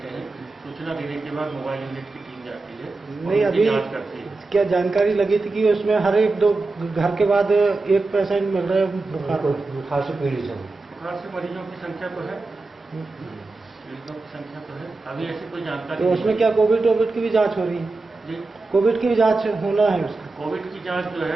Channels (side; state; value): left; quieter; 3.5 dB